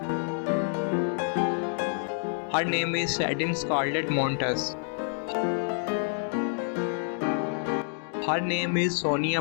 Her name is Satin Scarlett Montes. Her name is Sonia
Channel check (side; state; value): right; silent; 59 dB below the other